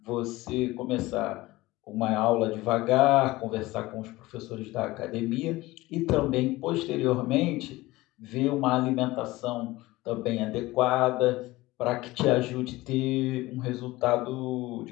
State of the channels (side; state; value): right; quieter; 19.3 dB